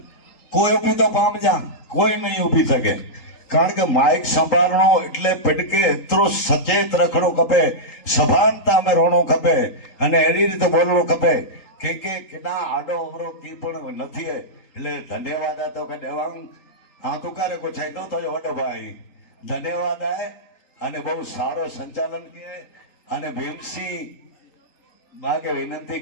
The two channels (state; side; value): late; right; 3.8 ms